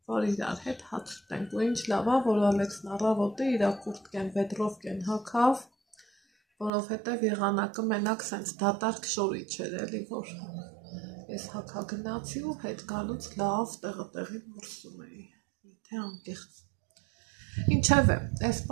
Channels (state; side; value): drops out; left; at 6.7 s